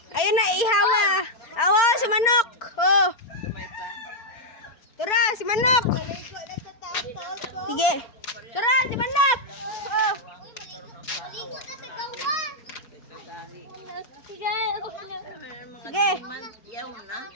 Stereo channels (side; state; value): right; late; 4.4 ms